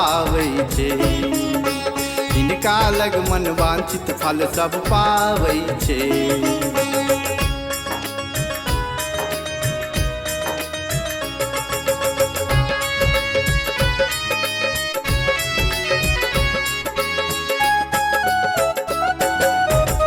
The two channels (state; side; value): identical; both; correlation 1.00